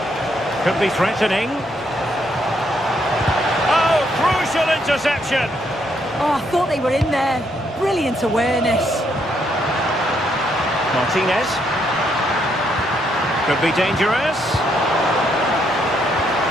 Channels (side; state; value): both; normal; correlation 0.74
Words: Could be threatening. Oh, crucial interception. Oh, I thought they were in there. Brilliant awareness. Martinez. Could be dangerous.